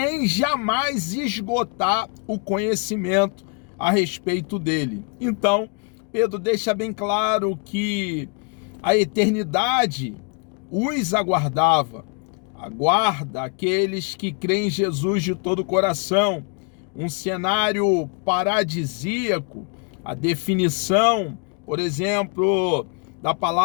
jamais esgotar o conhecimento a respeito dele. Então, Pedro deixa bem claro que a eternidade os aguardava, aguarda aqueles que creem em Jesus de todo o coração. Um cenário paradisíaco. A definição, por exemplo, da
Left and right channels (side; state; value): right; quieter; 35.5 dB